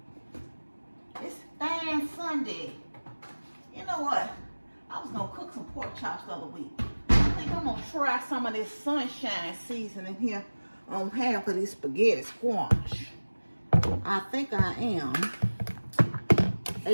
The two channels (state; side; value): inverted; both; correlation -1.00